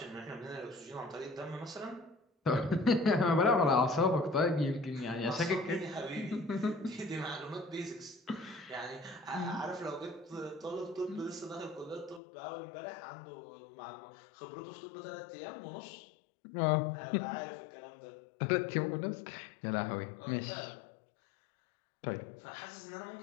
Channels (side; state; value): right; drops out; at 12.2 s